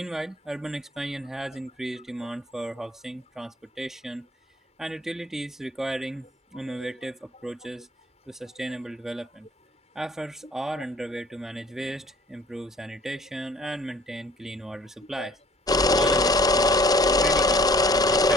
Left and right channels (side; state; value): both; normal; correlation 0.53